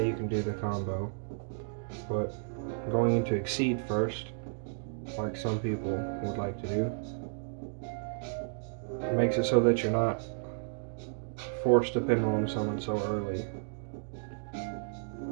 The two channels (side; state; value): left; silent; digital silence